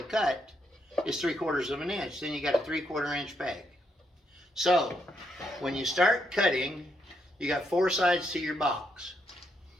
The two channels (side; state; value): both; normal; correlation 0.77